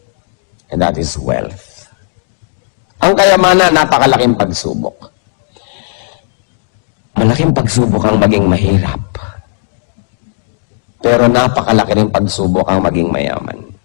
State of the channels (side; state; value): right; silent; digital silence